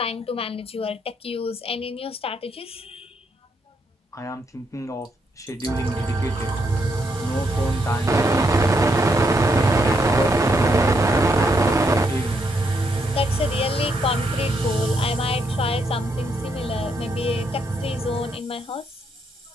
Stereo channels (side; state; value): both; normal; correlation 0.77